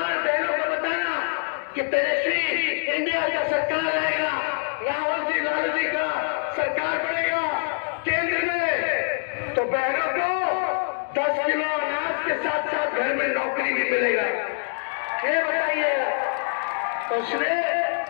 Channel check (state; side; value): silent; right; 62 dB below the other